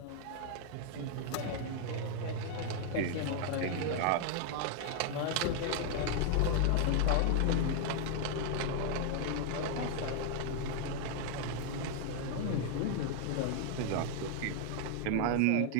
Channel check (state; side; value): different; both; correlation 0.00